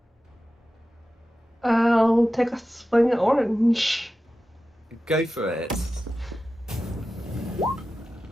I'll take a swing at orange. Go for it.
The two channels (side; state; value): both; normal; correlation 0.93